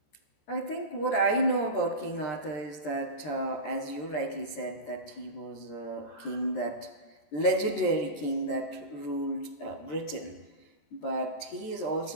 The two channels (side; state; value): right; late; 14 ms